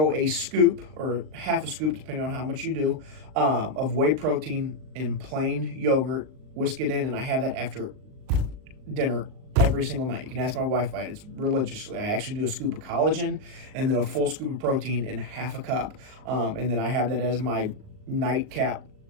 a scoop or half a scoop, depending on how much you do, of whey protein in plain yogurt, whisk it in, and I have that after dinner every single night. You can ask my wife about it. It's religiously. I actually do a scoop of collagen and then a full scoop of protein in half a cup. And then I have that as my nightcap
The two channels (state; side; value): late; left; 39 ms